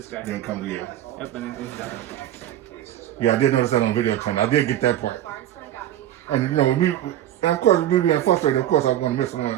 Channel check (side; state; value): left; quieter; 12.3 dB